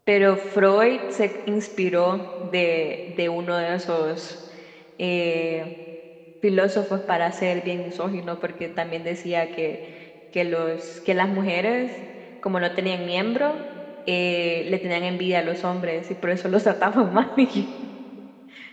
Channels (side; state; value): both; identical; correlation 1.00